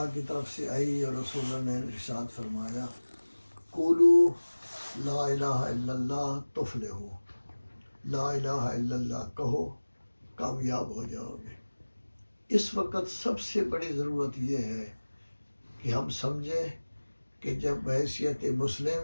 کی طرف سے آئی اور رسول اللہ نے ارشاد فرمایا، قولوا لا الہ الا اللہ تفلحوا، لا الہ الا اللہ کہو کامیاب ہو جاؤ گے۔ اس وقت سب سے بڑی ضرورت یہ ہے کہ ہم سمجھیں کہ جب بحیثیت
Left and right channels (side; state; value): both; inverted; correlation -1.00